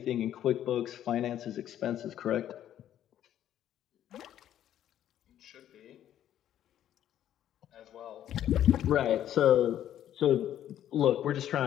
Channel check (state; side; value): quieter; right; 11.2 dB